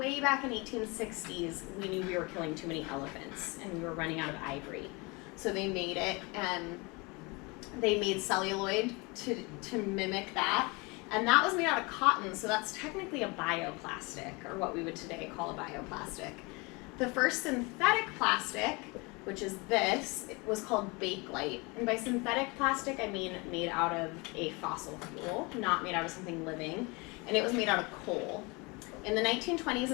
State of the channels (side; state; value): right; quieter; 27.3 dB